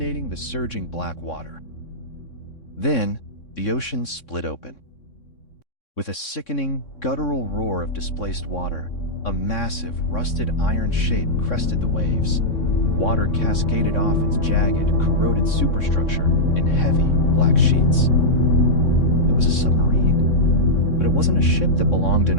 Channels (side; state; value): right; late; 3.6 ms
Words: the surging black water. Then, the ocean split open. With a sickening, guttural roar of displaced water, a massive, rusted iron shape crested the waves. Water cascaded off its jagged, corroded superstructure in heavy, black sheets. It was a submarine, but it wasn't a ship that belonged in